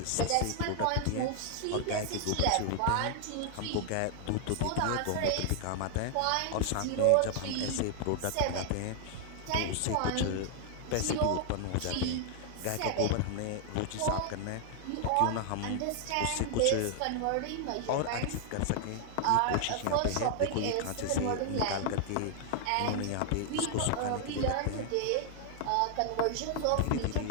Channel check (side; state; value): both; different; correlation 0.00